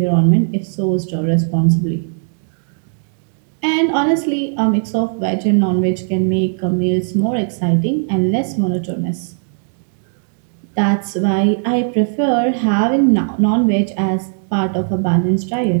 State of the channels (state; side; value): silent; left; 65 dB below the other